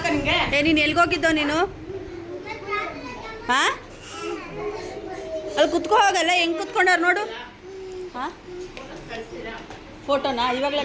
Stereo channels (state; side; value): identical; both; correlation 1.00